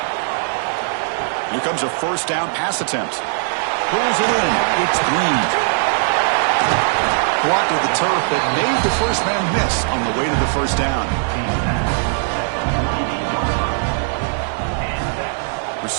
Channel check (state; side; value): silent; left; digital silence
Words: Here comes a 1st down pass attempt. Pulls it in. It's Green. Blocked with the turf that made the first man miss on the way to the 1st down.